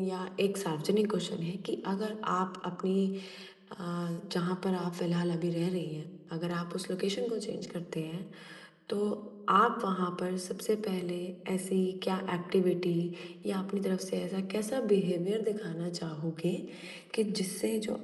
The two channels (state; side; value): identical; both; correlation 1.00